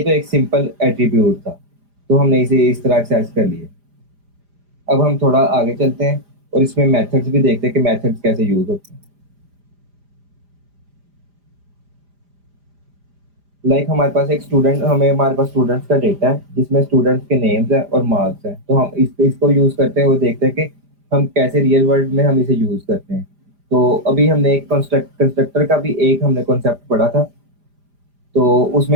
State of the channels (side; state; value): left; late; 5.0 ms